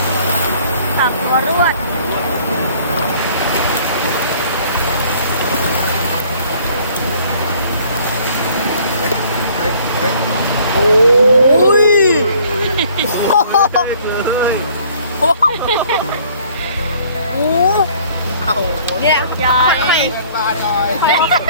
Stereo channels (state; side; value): inverted; both; correlation -0.57